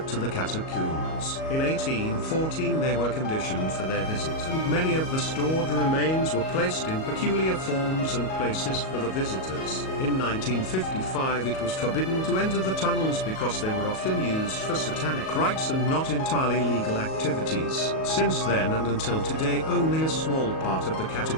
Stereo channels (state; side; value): late; right; 37 ms